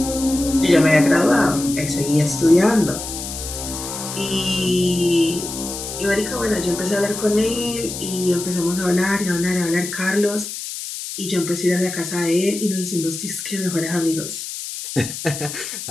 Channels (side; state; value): left; noise; hiss, 8 dB below the sound